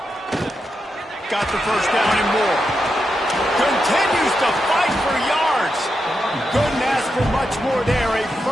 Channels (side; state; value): both; normal; correlation 0.86